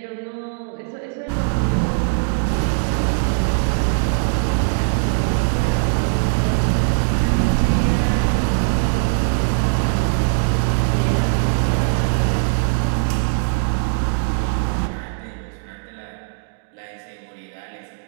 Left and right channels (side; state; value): left; silent; digital silence